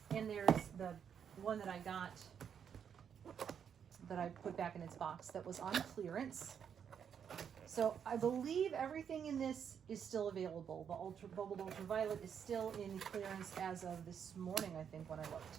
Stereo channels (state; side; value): quieter; left; 7.8 dB